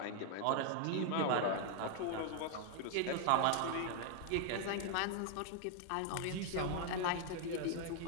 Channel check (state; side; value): different; both; correlation 0.00